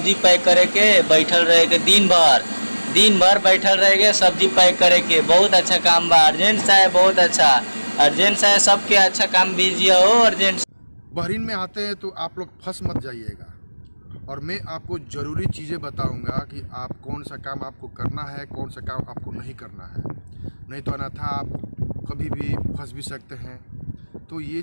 पैक करे के बैठल रहे के दिन भर बैठल रहे के सब्जी पैक करे के बहुत अच्छा काम बा। अर्जेंट साहब बहुत अच्छा। अर्जेंट साहब सबके अच्छा काम दीजिए हो अर्जेंट। बहरीन में आते हैं तो आप लोग फंस मत जाइएगा और मैं आपको ज़रूरी चीज़ें बताऊंगा कि आप कौन सा काम आपको करना है, कौन सा काम आपको नहीं करना है, नहीं तो अन्यथा आप कभी भी फंस भी सकते हैं। तो ये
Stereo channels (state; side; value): inverted; both; correlation -1.00